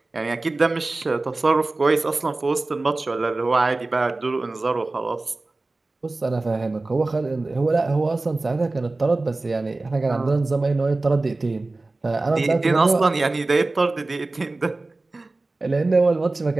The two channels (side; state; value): left; quieter; 3.2 dB